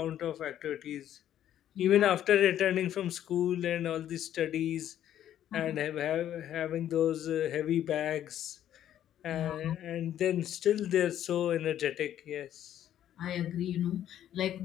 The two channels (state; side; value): quieter; right; 11.2 dB